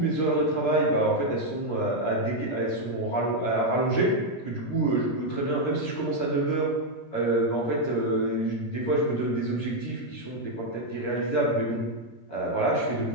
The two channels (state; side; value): late; right; 17 ms